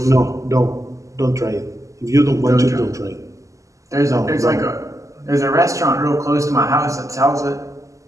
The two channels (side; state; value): left; late; 0.16 ms